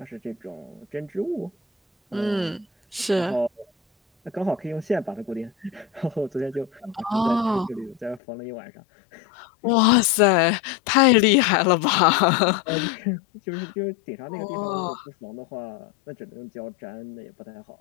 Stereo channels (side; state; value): right; drops out; at 8.2 s